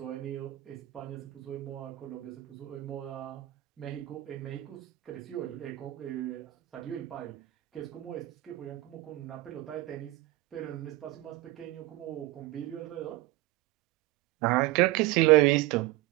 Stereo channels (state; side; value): quieter; left; 18.0 dB